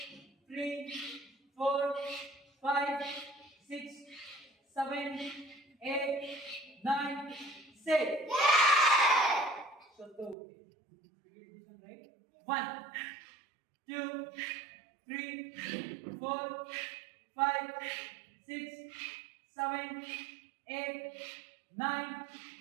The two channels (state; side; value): drops out; left; at 10.4 s